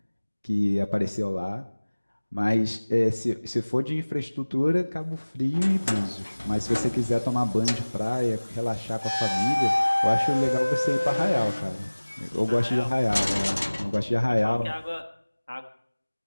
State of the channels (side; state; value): both; inverted; correlation -1.00